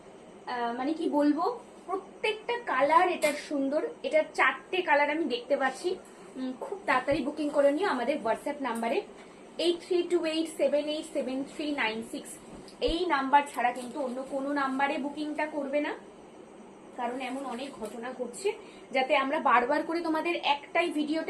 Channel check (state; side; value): identical; both; correlation 1.00